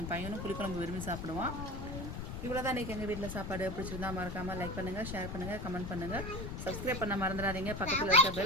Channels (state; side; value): noise; left; rumble, 6 dB below the sound